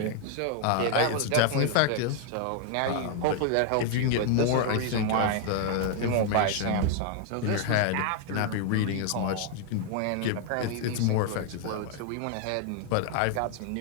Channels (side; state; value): both; different; correlation 0.00